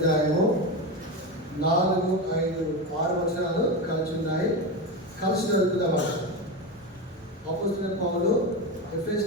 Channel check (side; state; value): both; normal; correlation 0.18